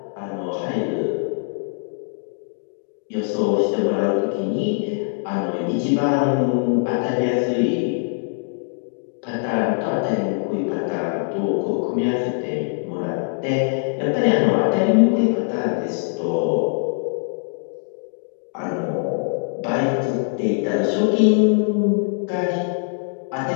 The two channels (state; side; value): silent; right; 64 dB below the other